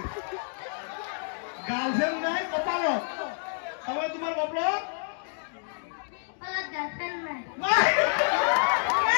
গার্লফ্রেন্ড নাই কপালত সবাই তোমার কপালত কপালত গার্লফ্রেন্ড নাই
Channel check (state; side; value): silent; right; digital silence